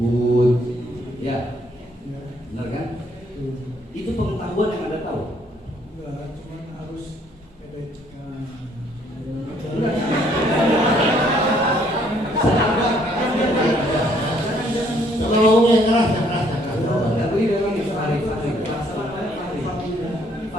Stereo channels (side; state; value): both; normal; correlation 0.65